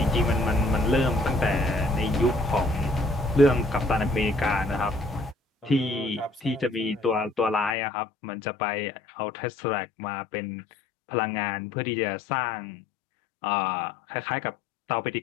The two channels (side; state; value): right; drops out; at 7.8 s